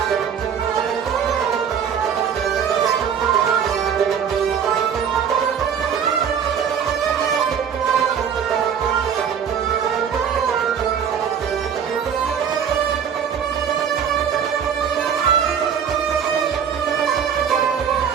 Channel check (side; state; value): left; quieter; 7.7 dB